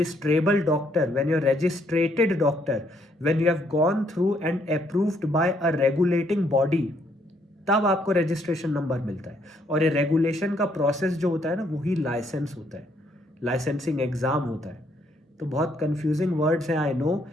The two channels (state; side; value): normal; both; correlation 0.70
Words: doctor, when you're registrated doctor, when you have gone through and approved by a regulating body, तब आपको रजिस्ट्रेशन नंबर मिलता है। और ये रेगुलेशन का प्रोसेस जो होता है ना, वही लाइसेंस होता है, लाइसेंसिंग एग्जाम होता है। तो बहुत कंफ्यूजिंग वर्ड्स हैं, I know,